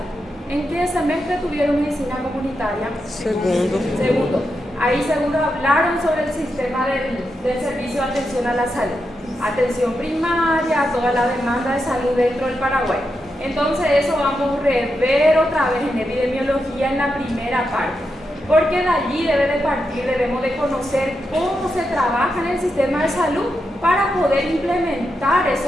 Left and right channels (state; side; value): normal; both; correlation 0.86